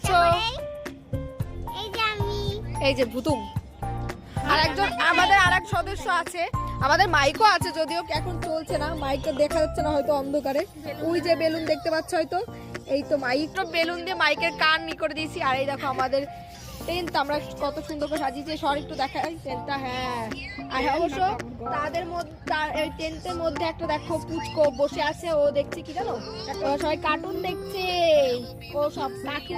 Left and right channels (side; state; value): both; identical; correlation 1.00